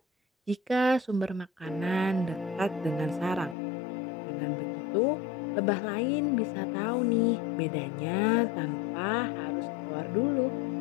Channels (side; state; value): right; drops out; at 3.6 s